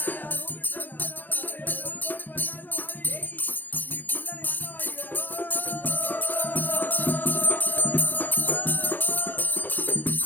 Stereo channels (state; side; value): late; right; 0.086 ms